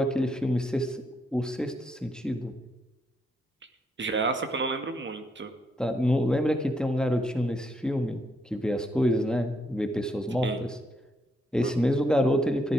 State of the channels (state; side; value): normal; both; correlation 0.76